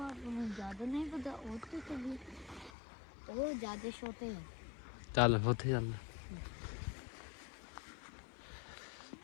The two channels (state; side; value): drops out; right; at 2.7 s